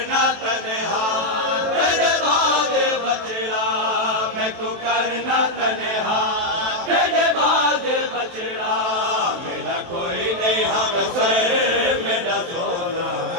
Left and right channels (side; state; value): left; late; 23 ms